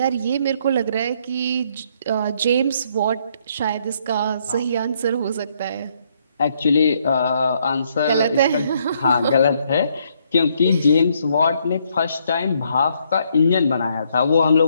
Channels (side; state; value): both; inverted; correlation -0.71